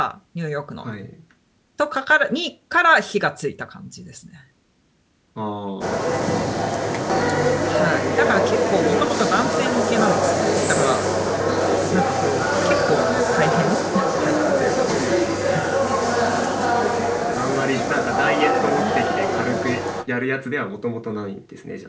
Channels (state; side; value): identical; both; correlation 1.00